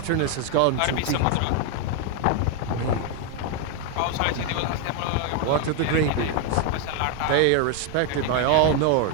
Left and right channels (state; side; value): different; both; correlation 0.01